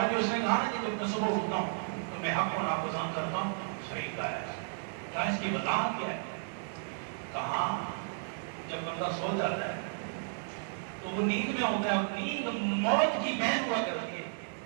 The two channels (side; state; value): left; silent; digital silence